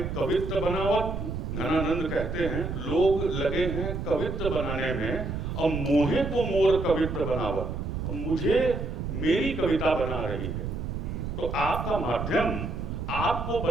कवित्र बनावत। घनानंद कहते हैं लोग लगे हैं कवित्र बनाने में, और मोहे को मोर कवित्र बनावत, और मुझे मेरी कविता बना रही है। तो आपका माध्यम आपको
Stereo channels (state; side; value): noise; right; rumble, 4 dB below the sound